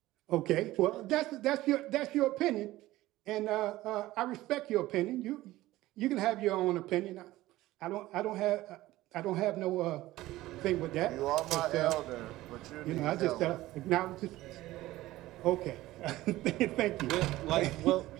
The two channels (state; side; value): quieter; left; 16.8 dB